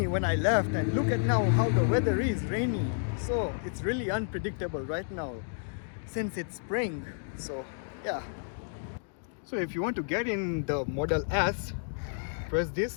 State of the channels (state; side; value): silent; right; digital silence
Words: when I left, and look at now how the weather is rainy. So it's really unpredictable right now since it's spring. So yeah. So if you want to get in the Model S, press